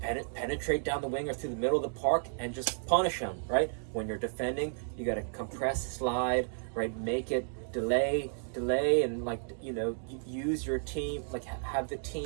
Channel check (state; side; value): silent; left; digital silence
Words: penetrate down the wing or through the middle of the park and just punish them, right? When you're defending, you got to compress, slide, right? Make it delay, and like, you know, use your team, like have the